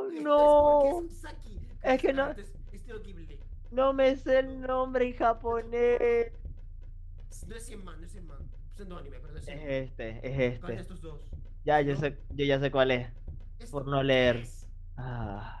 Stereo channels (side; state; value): both; identical; correlation 1.00